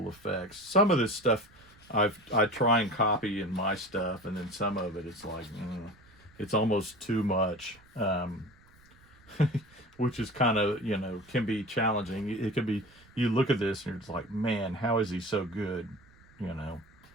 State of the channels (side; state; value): right; noise; rumble, 27 dB below the sound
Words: effects. Some of this stuff I try and copy in my stuff, and then some of it, it's like, it's almost too much. Which is kind of, can be challenging. It can be, you look at this and it's like, man, how is he so good?